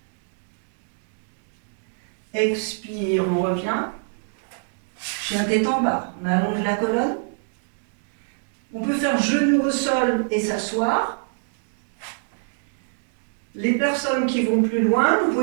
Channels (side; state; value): left; silent; digital silence